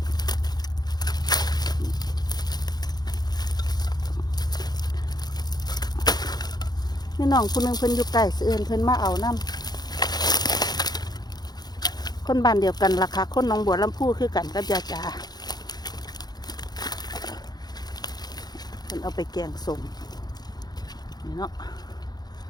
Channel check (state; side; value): late; right; 0.19 ms